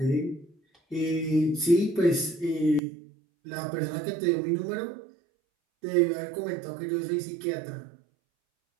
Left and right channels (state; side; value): drops out; left; at 2.8 s